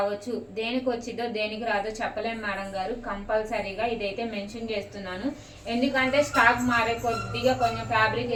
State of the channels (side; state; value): both; identical; correlation 1.00